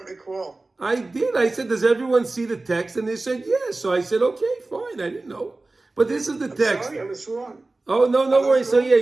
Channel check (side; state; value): left; quieter; 3.2 dB